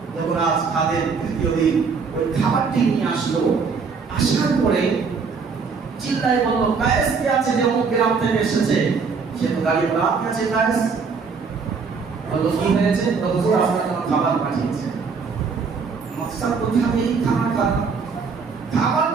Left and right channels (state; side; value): quieter; left; 5.2 dB